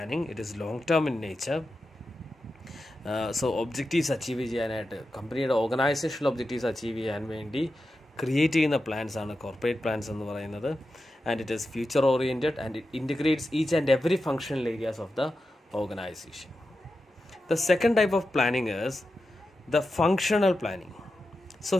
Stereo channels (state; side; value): normal; both; correlation 0.91